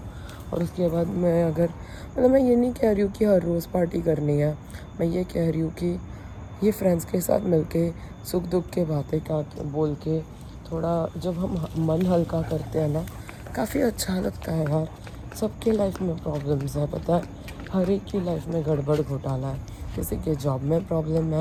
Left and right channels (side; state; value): both; identical; correlation 1.00